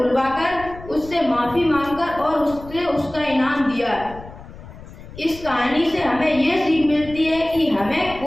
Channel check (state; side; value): noise; left; rumble, 16 dB below the sound